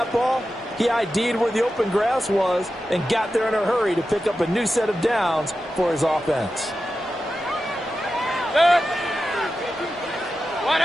ball, he ID'd where the open grass was and got there in a hurry to pick up a new set of downs for his offense.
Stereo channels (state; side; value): normal; both; correlation 0.92